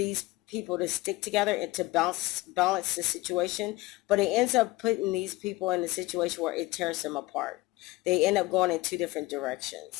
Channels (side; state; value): right; quieter; 20.1 dB